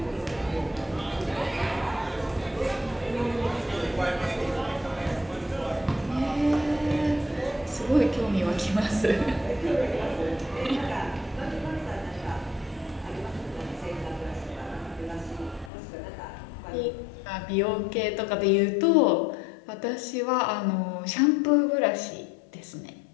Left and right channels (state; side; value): drops out; right; at 15.7 s